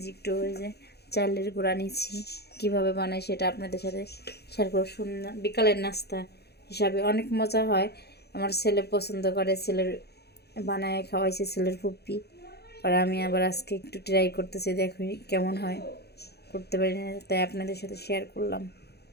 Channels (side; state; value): right; late; 0.47 ms